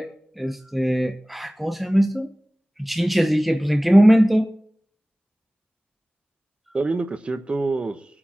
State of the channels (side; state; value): both; normal; correlation 0.98